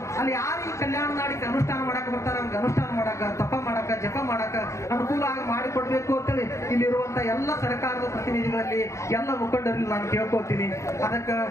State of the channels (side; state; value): right; late; 0.14 ms